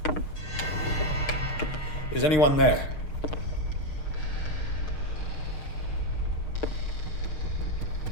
Is anyone there?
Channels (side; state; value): right; late; 6.5 ms